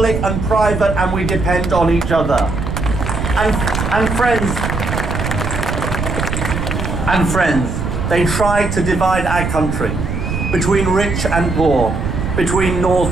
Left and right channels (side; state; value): right; noise; rumble, 3 dB below the sound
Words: and private, and we depend on each other. And friends, they try to divide our country between rich and poor, between